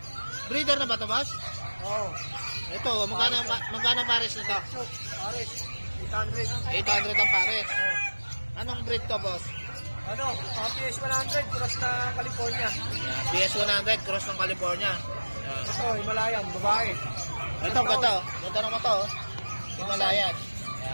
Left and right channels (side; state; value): both; inverted; correlation -1.00